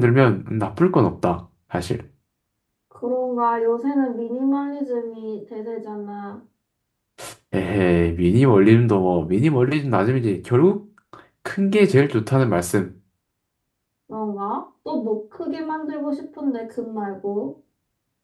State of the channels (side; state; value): both; identical; correlation 1.00